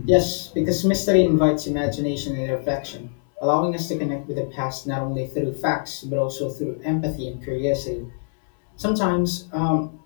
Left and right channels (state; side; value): silent; right; digital silence